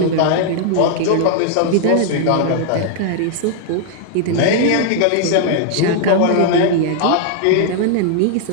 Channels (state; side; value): different; both; correlation -0.01